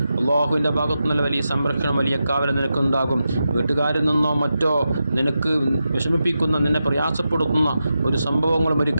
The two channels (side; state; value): both; inverted; correlation -0.89